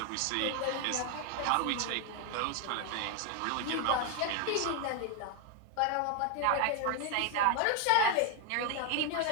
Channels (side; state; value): both; different; correlation 0.01